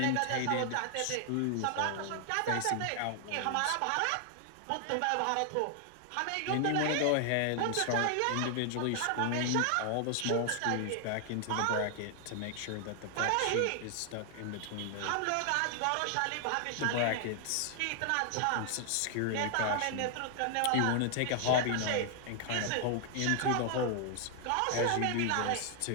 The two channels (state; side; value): different; both; correlation 0.00